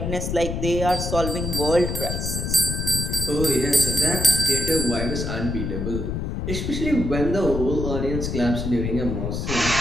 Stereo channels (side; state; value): left; noise; rumble, 3 dB below the sound